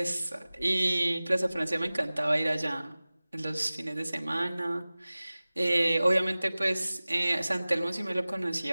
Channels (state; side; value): inverted; both; correlation -0.98